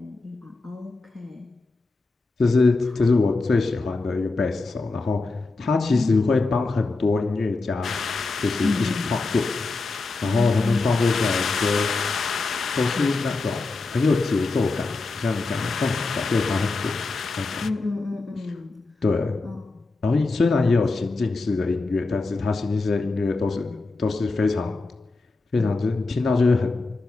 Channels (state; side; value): quieter; right; 3.6 dB